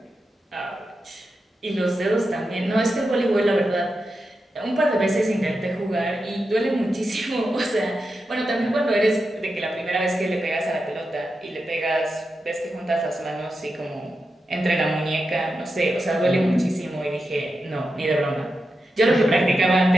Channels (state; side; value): normal; both; correlation 0.89